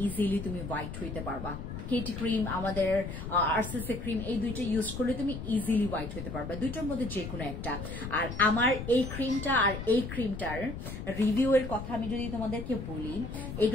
ইজিলি তুমি হোয়াইট হইতে পারবা। কেটি ক্রিম, আমাদের আরসিসি ক্রিম, এই দুইটা ইউজ করলে তুমি ইজিলি হোয়াইট হতে পারবে, দুইটার মধ্যে যে কোনো একটা। আর আমার এই ক্রিমটা আর এই ক্রিমটার রিভিউ এর কথা আমি যদি তোমাদেরকে বলি,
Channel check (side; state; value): left; noise; rumble, 8 dB below the sound